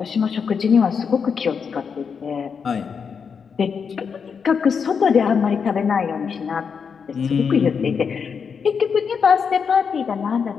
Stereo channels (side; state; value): right; quieter; 6.2 dB